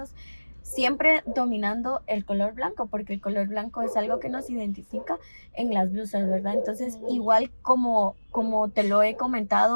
siempre dominando el color blanco, porque el color blanco es algo que nos identifica en las blusas, ¿verdad? Entonces, igual como te lo he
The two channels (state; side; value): inverted; both; correlation -1.00